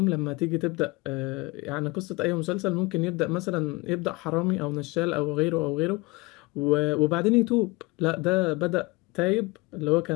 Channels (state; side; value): quieter; right; 24.0 dB